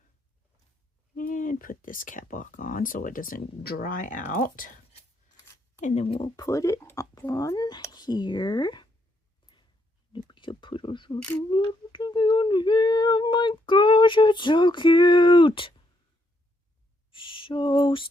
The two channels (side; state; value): both; normal; correlation 0.75